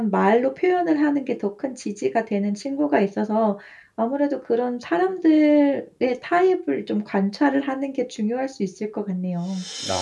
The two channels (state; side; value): identical; both; correlation 1.00